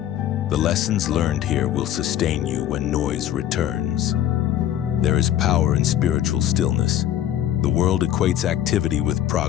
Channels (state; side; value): quieter; right; 11.5 dB